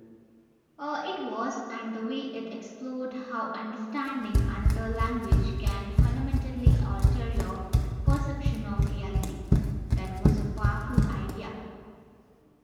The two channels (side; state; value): both; identical; correlation 1.00